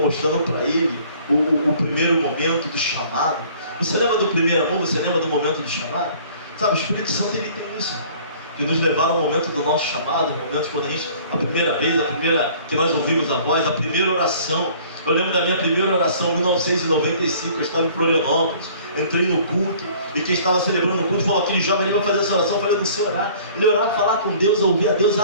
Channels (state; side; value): inverted; both; correlation -0.52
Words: para ele o primeiro momento do chamado. Você lembra do primeiro amor? Você lembra do momento do chamado? Sabe, o Espírito Santo ele tem isso, que nos levaram ao momento do nosso chamado, momentos quando a primeira vez, que nós ouvimos a voz, a primeira oração. Eu lembro da minha primeira oração em 1995, eu estava em Florianópolis, entrei no culto, e quem estava celebrando o culto falou, aquele jovem ali vai fazer essa oração. Eu falei, não sei orar. Ele orar, falar com Deus, ouvir a Deus,